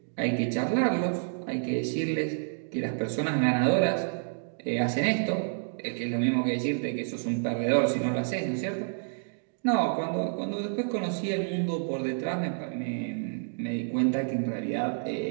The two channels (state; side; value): silent; left; digital silence